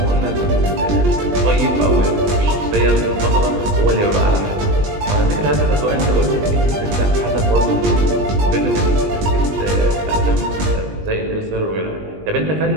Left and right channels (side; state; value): left; late; 20 ms